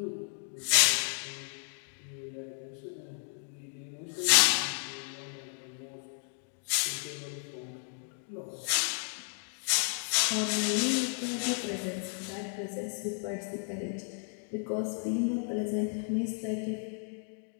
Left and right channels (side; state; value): right; silent; 56 dB below the other